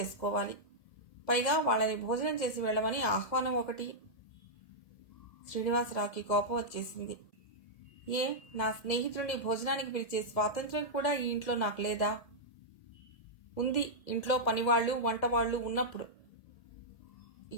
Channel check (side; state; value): right; late; 2.0 ms